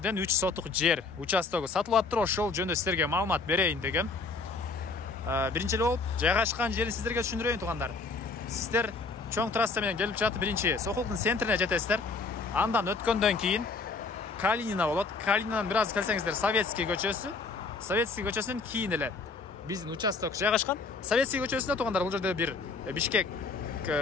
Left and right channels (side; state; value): right; quieter; 4.1 dB